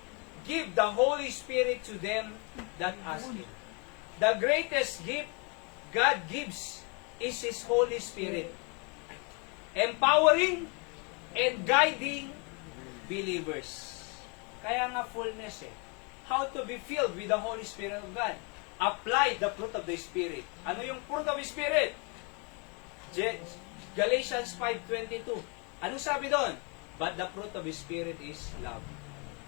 give the Holy Spirit to them that ask Him. The greatest gift God gives is His Holy Spirit. Empowering and guiding believers. Kaya nga fullness eh. How to be filled with the Holy Spirit of God. Apply the fruit of the Spirit. Ano yung fruit of the Spirit? Galatians 5:22. Anong sabi doon? But the fruit of the Spirit is love.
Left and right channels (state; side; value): quieter; right; 33.5 dB